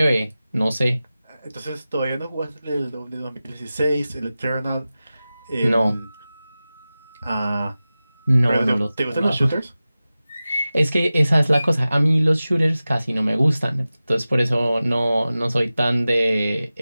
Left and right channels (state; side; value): inverted; both; correlation -0.96